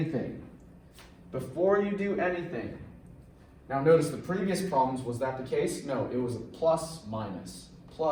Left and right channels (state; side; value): identical; both; correlation 1.00